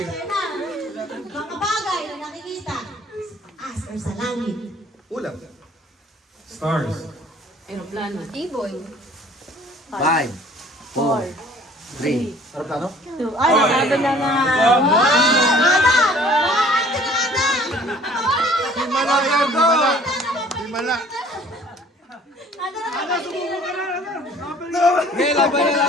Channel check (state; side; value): normal; both; correlation 0.53